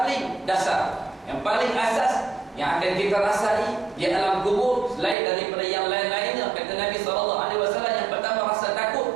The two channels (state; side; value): drops out; left; at 5.2 s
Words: dasar, yang paling asas yang akan kita rasai di alam kubur selain daripada yang lain-lainnya, kata Nabi SAW. Yang pertama rasa